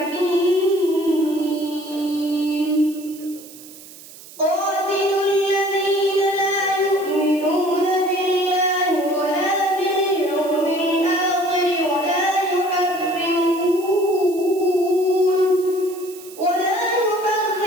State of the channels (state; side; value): noise; right; hiss, 19 dB below the sound